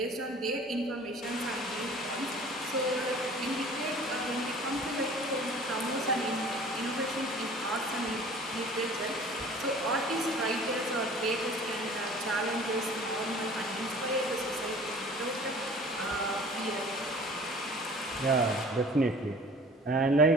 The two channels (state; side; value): normal; both; correlation 0.46